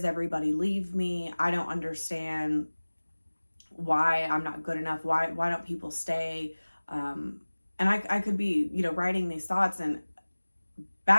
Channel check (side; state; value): both; inverted; correlation -1.00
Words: everybody leave me? I don't understand why I'm not good enough. Why don't people stay? And I could be, you know, writing these thoughts, and